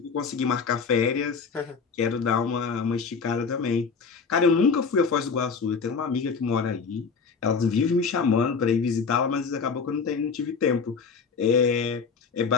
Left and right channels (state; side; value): quieter; right; 5.3 dB